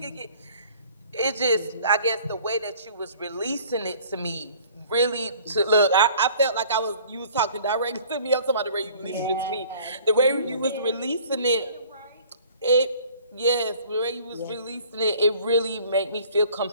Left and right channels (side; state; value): both; inverted; correlation -0.51